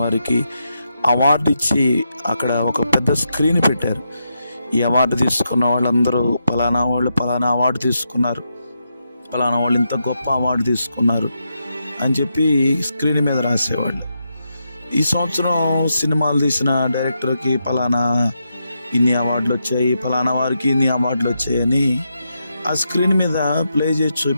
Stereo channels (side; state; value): both; inverted; correlation -0.84